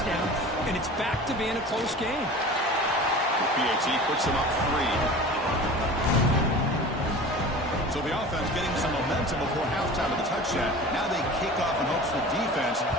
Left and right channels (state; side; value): normal; both; correlation 0.38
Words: and it's back to being a close game. PAT puts him up 3. So the offense getting some momentum before halftime of the touchdown. Now they kick off in hopes the defense